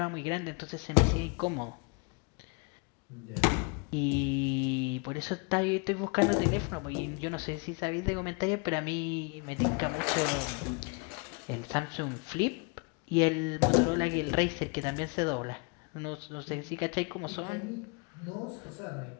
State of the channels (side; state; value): right; quieter; 31.9 dB